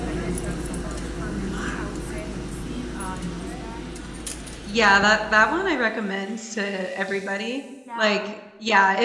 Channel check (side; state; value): both; identical; correlation 1.00